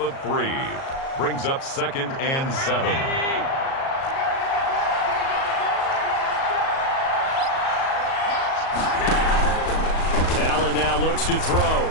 3. Brings up 2nd and 7. Allen now looks to throw.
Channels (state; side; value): late; right; 37 ms